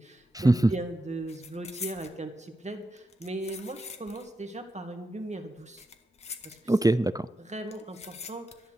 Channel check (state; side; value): normal; both; correlation 0.87